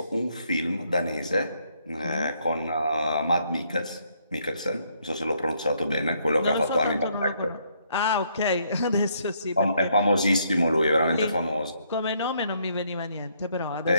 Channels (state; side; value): inverted; both; correlation -0.71